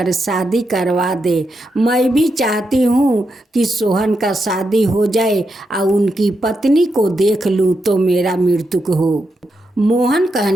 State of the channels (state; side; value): normal; both; correlation 0.84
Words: शादी करवा दे। मैं भी चाहती हूँ कि सोहन का शादी हो जाए और उनकी पत्नी को देख लूँ तो मेरा मृत्यु हो। मोहन